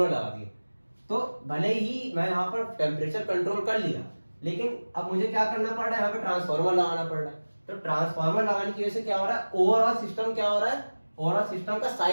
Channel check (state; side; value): inverted; both; correlation -1.00